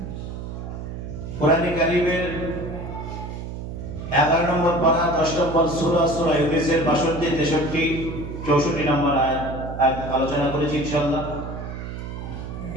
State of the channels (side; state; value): right; noise; hum, 8 dB below the sound